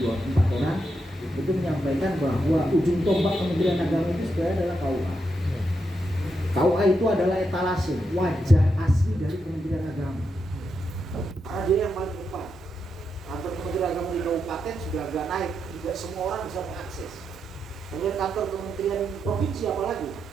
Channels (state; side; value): normal; both; correlation 0.84